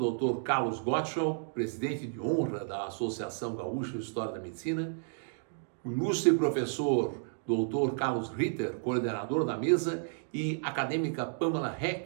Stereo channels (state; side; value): silent; left; digital silence